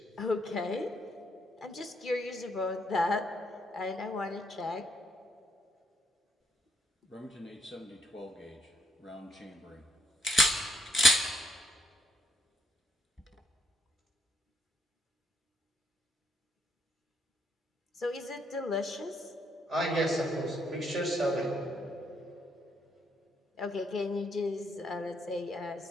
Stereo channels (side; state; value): both; normal; correlation 0.72